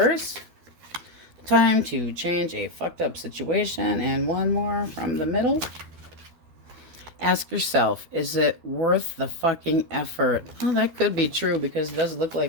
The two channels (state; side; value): late; left; 12 ms